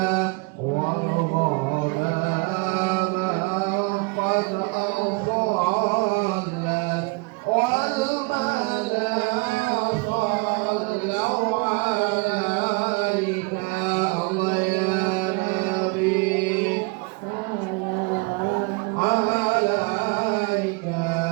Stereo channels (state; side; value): quieter; left; 28.4 dB